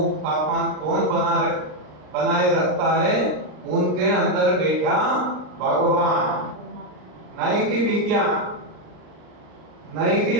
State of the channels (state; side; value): late; left; 39 ms